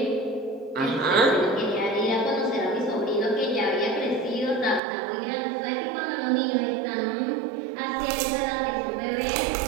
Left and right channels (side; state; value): left; drops out; at 4.8 s